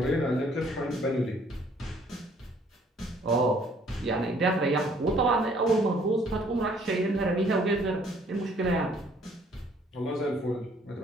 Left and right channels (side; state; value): both; normal; correlation 0.61